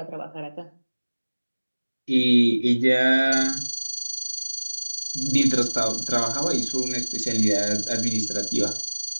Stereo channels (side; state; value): both; inverted; correlation -1.00